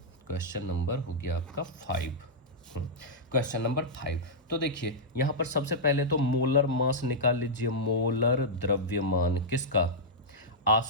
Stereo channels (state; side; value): normal; both; correlation -0.08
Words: क्वेश्चन नंबर हो गया आपका 5, क्वेश्चन नंबर 5। तो देखिए यहाँ पर सबसे पहले तो मोलर मास निकाल लीजिए, मोलर द्रव्यमान किसका?